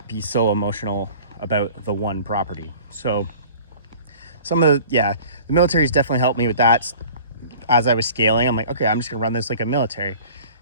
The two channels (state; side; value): inverted; both; correlation -0.46